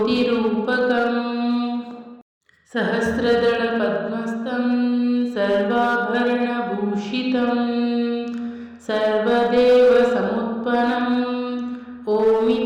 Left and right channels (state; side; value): identical; both; correlation 1.00